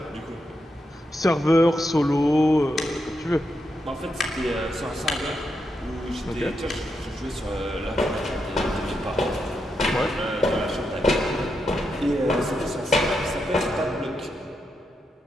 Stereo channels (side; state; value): both; normal; correlation 0.84